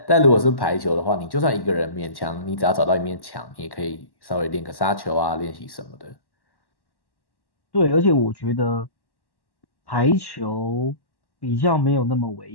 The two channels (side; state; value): right; late; 1.1 ms